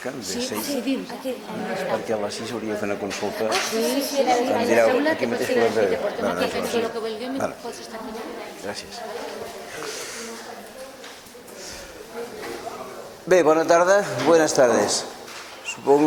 de 6? Sí, aquí. Perquè a les 6 hauria de fer una consulta. Sí, Em direu, aquí mateix que ho hem de... Vale. Gràcies. Bé, bona tarda, buenas tardes.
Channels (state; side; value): identical; both; correlation 1.00